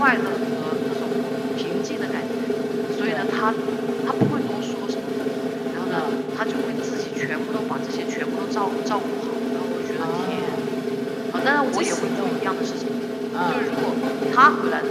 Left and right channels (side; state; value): both; identical; correlation 1.00